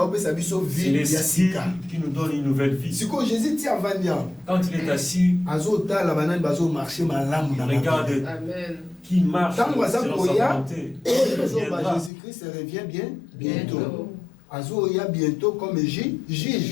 biso C'est vie ya l'esprit sika qui nous donne une nouvelle vie. sikoyo jésus ti avandi awa Quand il est assis, azotala banani bazomarche malamu na il regarde mabe Amen. qui marche Tant que ça selon sa volonté, viendra. Jésus-Christ revient bientôt. Azoya bientôt comme juge.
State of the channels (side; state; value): right; drops out; at 12.1 s